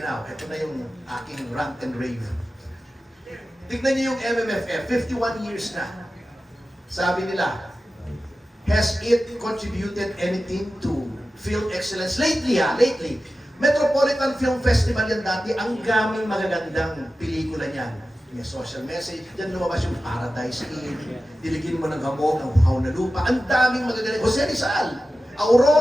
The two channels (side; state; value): both; normal; correlation 0.94